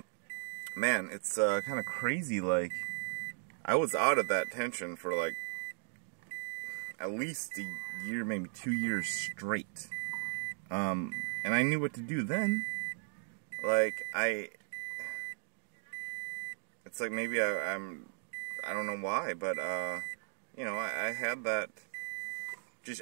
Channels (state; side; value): silent; left; digital silence